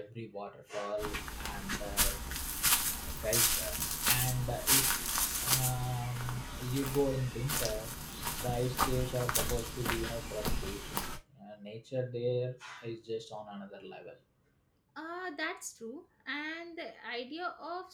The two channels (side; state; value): both; identical; correlation 1.00